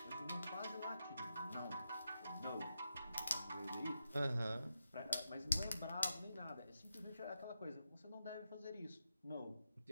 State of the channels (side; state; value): both; inverted; correlation -0.87